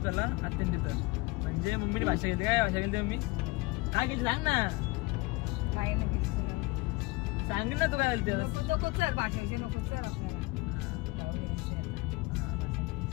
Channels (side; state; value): right; quieter; 23.4 dB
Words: त्याला आता तिथं म्हणजे मम्मीने भाषा घेतली. काय भाषा घेतली मम्मी काय घेतली सांग ना. काय नाही सांग ना तू काय बोलते नको चल भाषेविषयी नको चल आपल्याला